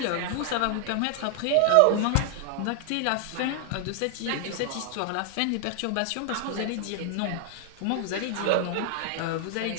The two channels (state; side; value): different; both; correlation 0.00